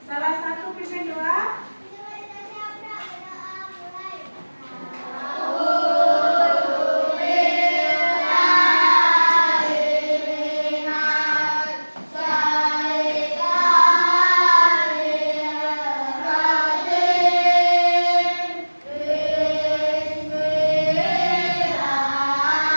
Salah satu pimpin doa.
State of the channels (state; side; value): inverted; both; correlation -1.00